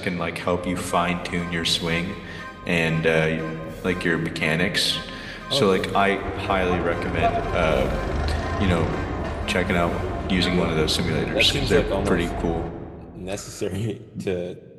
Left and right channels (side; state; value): both; identical; correlation 1.00